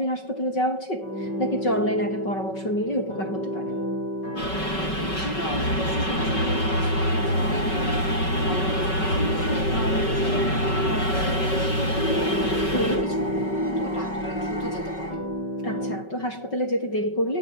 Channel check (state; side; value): late; right; 5.3 ms